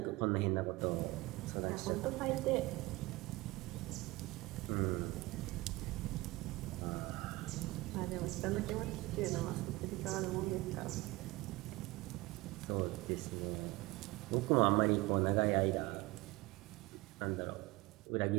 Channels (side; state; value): left; quieter; 21.3 dB